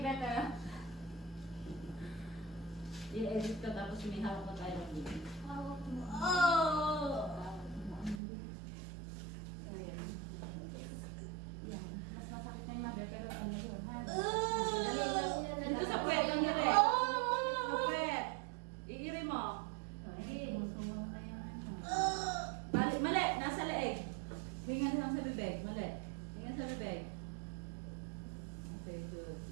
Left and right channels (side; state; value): left; drops out; at 8.2 s